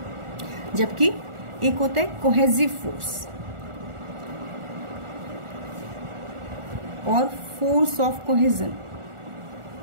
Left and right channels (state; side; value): late; left; 1.4 ms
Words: जबकि एक होता है cohesive force और force of cohesion.